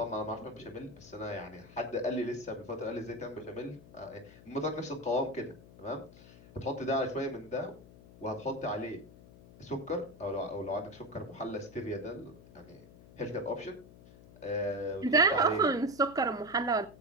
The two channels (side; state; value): left; noise; hum, 20 dB below the sound